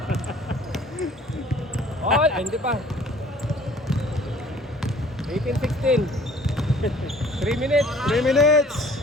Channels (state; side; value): normal; both; correlation 0.53